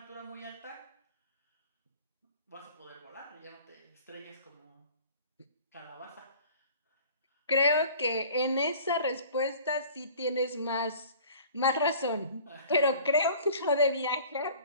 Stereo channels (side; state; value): both; inverted; correlation -0.47